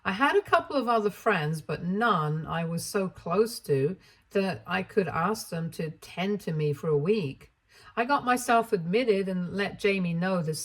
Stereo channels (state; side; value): identical; both; correlation 1.00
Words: I had a couple of other friends, but none I was so close to that I could ask them to tend to me for a week. I got myself admitted and let Jamie know the